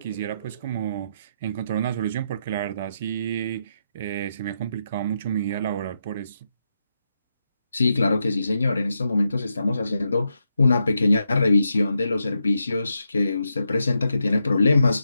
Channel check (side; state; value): both; inverted; correlation -0.83